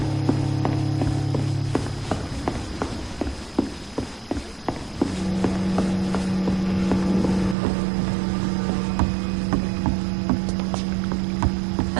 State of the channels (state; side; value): drops out; left; at 7.6 s